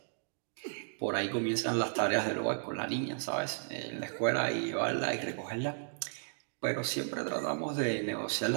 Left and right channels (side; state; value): left; silent; digital silence